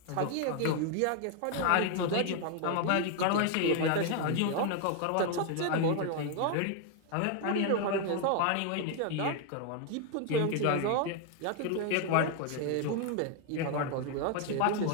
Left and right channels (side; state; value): both; different; correlation 0.01